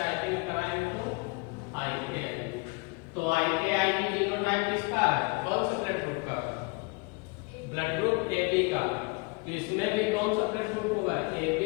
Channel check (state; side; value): quieter; right; 29.8 dB